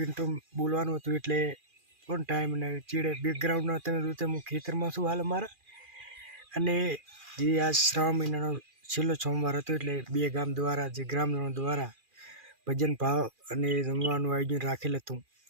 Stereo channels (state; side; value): late; left; 2.4 ms